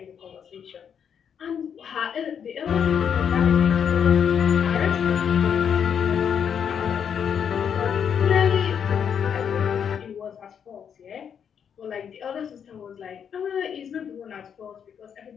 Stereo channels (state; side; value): quieter; right; 7.8 dB